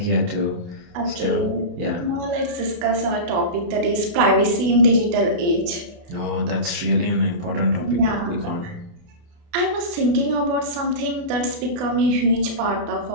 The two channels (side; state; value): left; late; 28 ms